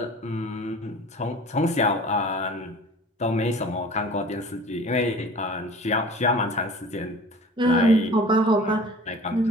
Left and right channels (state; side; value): normal; both; correlation 0.43